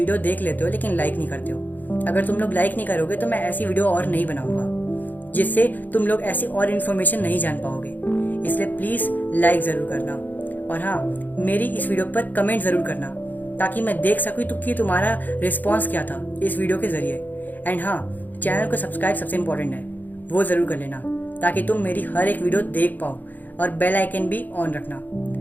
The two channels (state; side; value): late; right; 0.085 ms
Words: देख लेते हो लेकिन लाइक नहीं करते हो। अगर तुम लोग लाइक नहीं करोगे तो मैं ऐसी वीडियो और नहीं बनाऊंगा जिससे तुम लोग ऐसी और इन्फॉर्मेशन नहीं जान पाओगे। इसलिए प्लीज़ लाइक ज़रूर करना। और हाँ, मेरी इस वीडियो पर कमेंट ज़रूर करना ताकि मैं देख सकूँ तो कि तुम्हारा रिस्पॉन्स क्या था इस वीडियो के ज़रिए। एंड हाँ, चैनल को सब्सक्राइब सबसे इम्पोर्टेंट है, वो ज़रूर कर लेना ताकि तुम मेरी हर एक वीडियो देख पाओ, और बेल आइकन भी ऑन रखना।